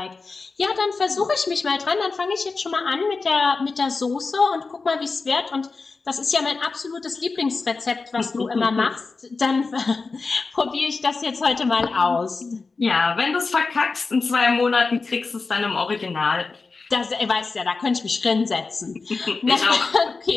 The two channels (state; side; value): quieter; right; 4.2 dB